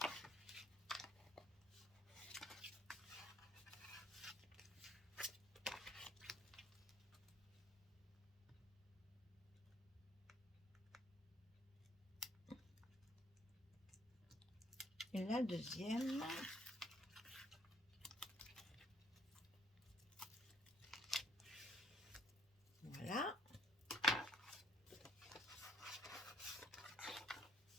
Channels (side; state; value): both; normal; correlation 0.65